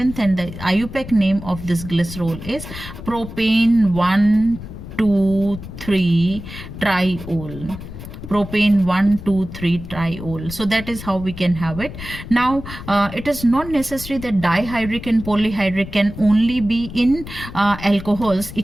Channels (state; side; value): noise; left; rumble, 12 dB below the sound